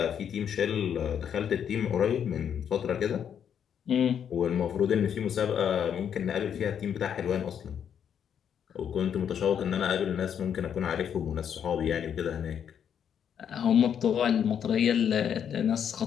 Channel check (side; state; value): right; quieter; 8.4 dB